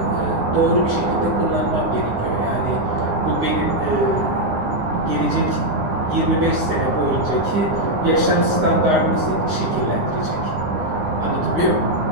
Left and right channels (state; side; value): late; left; 9.7 ms